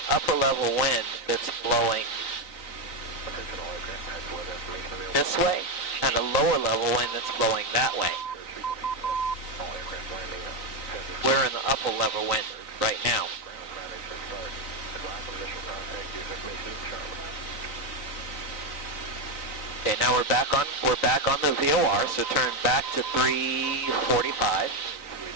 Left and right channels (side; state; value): right; late; 3.9 ms